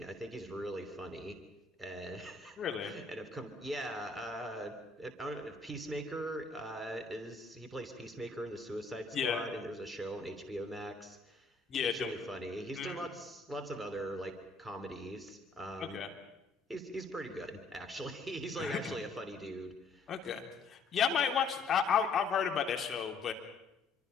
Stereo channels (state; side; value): quieter; right; 3.9 dB